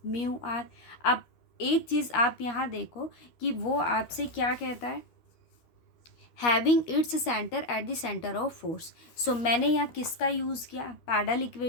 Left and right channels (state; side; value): late; right; 13 ms